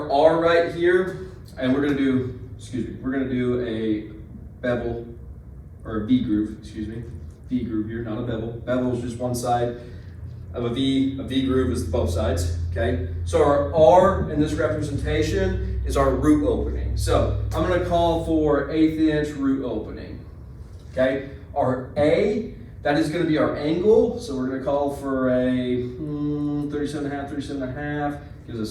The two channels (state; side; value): identical; both; correlation 1.00